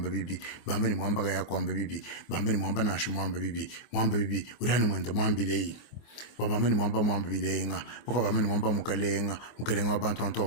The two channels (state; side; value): late; right; 24 ms